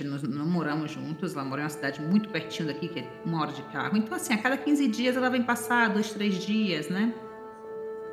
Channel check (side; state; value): both; identical; correlation 1.00